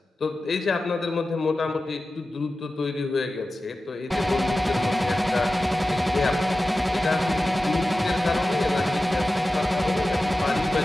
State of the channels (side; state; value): both; normal; correlation 0.94